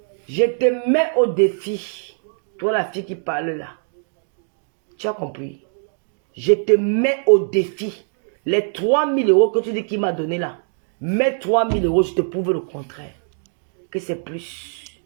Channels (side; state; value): left; silent; 60 dB below the other